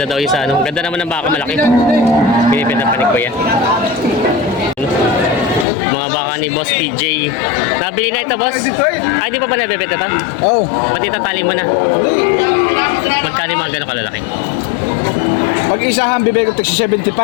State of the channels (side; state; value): right; drops out; at 5.7 s